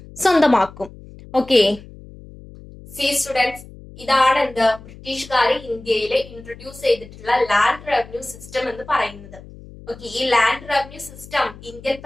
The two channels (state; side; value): noise; left; hum, 18 dB below the sound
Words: സ്വന്തമാക്കും. ഓക്കെ, സി സ്റ്റുഡൻസ്, ഇതാണ് എന്ത് ബ്രിട്ടീഷുകാർ ഇന്ത്യയിൽ ഇൻട്രൊഡ്യൂസ് ചെയ്തിട്ടുള്ള ലാൻഡ് റവന്യൂ സിസ്റ്റം എന്ന് പറയുന്നത്. ഓക്കെ, ഈ ലാൻഡ് റവന്യൂ സിസ്റ്റം ഇന്ത്യൻ